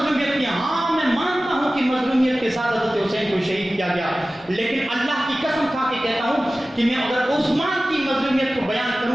کی۔ ہاں میں مانتا ہوں کہ مظلومیت کے ساتھ حضرت حسین کو شہید کیا گیا، لیکن اللہ کی قسم کھا کے کہتا ہوں کہ میں اگر عثمان کی مظلومیت کو بیان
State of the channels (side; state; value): both; normal; correlation 0.96